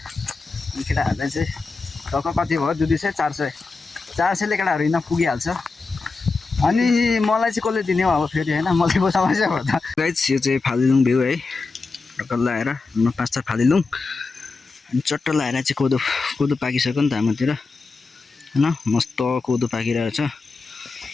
अनि केटाहरूलाई चाहिँ टक्क कति भयो, 200 400 400ले केटाहरू हिँड्न पुगिहाल्छ। अनि मलाई चाहिँ कसले दिने हो अब फेरि होइन, मलाई पो समस्या भयो त। गाइज यो चाहिँ फालिलुङ भ्यू है, टक्कर लगाएर 5 फालिलुङ। अनि चट्ट लगाएर चाहिँ कोदो कोदो पाकिसक्यो नि त हाम्रोतिर होइन, मस्त कोदो पाकिरहेको छ।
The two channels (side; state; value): right; quieter; 4.1 dB